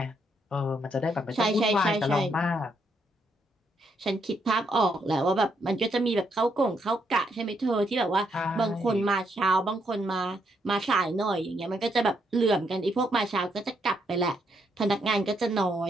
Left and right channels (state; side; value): normal; both; correlation 0.76